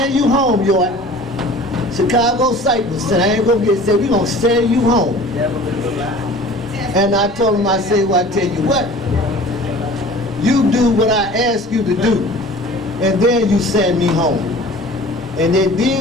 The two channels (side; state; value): both; normal; correlation 0.44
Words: you home, yo. Chicago Cypress said, I ain't gonna get said, we gonna send you home. And I told him, I said, well, I tell you what, you do what I ask you to do, and then you send me home. And they